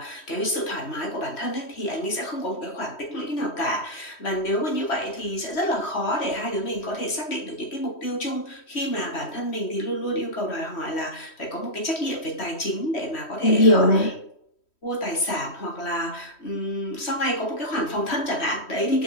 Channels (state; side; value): late; right; 3.1 ms